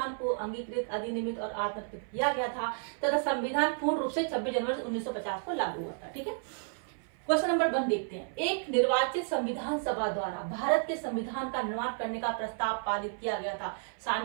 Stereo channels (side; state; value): left; silent; 55 dB below the other